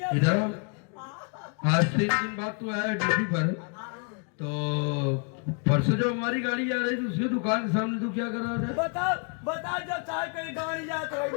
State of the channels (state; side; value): quieter; right; 38.5 dB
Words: इधर आज 3 दिन बाद तू आया ड्यूटी पर, तो परसों जो हमारी गाड़ी आ रही थी, उसकी दुकान के सामने तू क्या कर रहा था? बता बता, जब चाहे कहीं गाड़ी जात रही